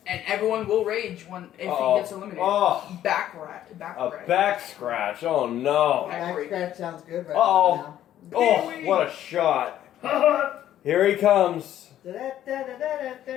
And everyone will rage if Uh-oh. he gets eliminated. Oh, Back rat. Back a rat. back scratch. Oh no. Back scratch sounds good right Uh-oh. now. Oh, what a shot. Here he comes.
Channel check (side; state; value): right; quieter; 11.8 dB